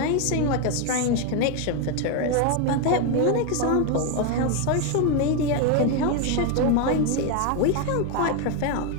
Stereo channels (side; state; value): both; different; correlation 0.02